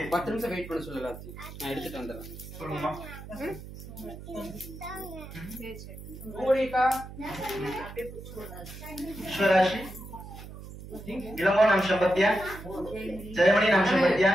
10 நிமிஷம் வெயிட் பண்ண சொல்லல நான் எடுத்துட்டு வந்துறேன் சொல்லுமா ஓடிக்கா ईश्वराशि इलंगो नाम संपत्य जयमणि नाम संपत्य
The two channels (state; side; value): noise; right; hum, 13 dB below the sound